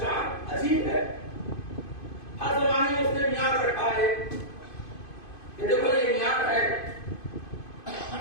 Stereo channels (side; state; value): right; late; 2.5 ms